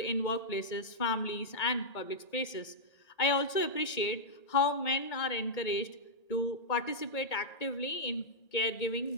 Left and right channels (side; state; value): right; late; 1.8 ms